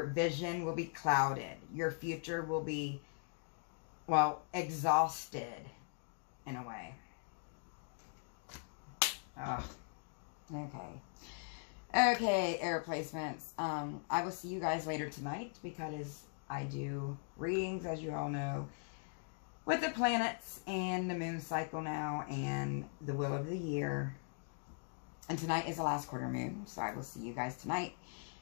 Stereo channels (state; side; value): silent; right; 51 dB below the other